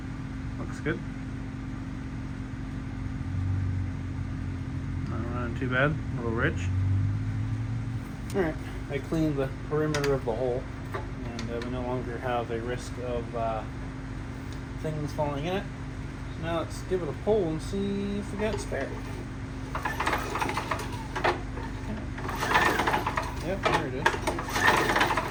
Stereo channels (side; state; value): both; identical; correlation 1.00